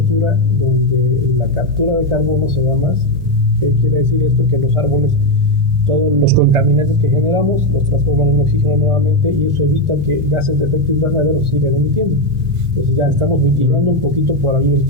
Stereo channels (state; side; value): normal; both; correlation 0.06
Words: donde la captura de carbono se da más. ¿Qué quiere decir esto? Que los árboles, todos los contaminantes que generamos, los transforman en oxígeno nuevamente, y eso evita que gases de efecto invernadero sigan emitiendo. Entonces ya estamos mitigando un poquito por ahí el